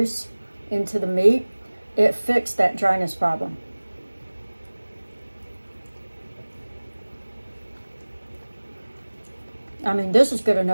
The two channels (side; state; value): both; inverted; correlation -1.00